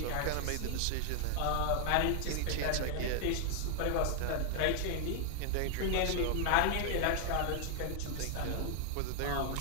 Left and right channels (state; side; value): different; both; correlation 0.00